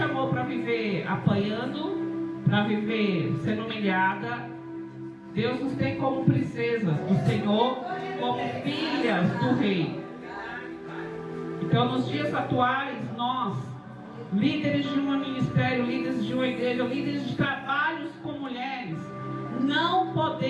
para viver apanhando, para viver sendo humilhada. Deus nos tem como princesas do Senhor, como filhas do Rei. Então, nos dias atuais, nós, líderes de um ministério, líderes de uma igreja, líderes de trabalhos com mulheres, não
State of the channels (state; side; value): identical; both; correlation 1.00